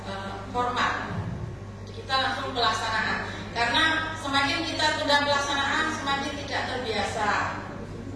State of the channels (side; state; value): both; identical; correlation 1.00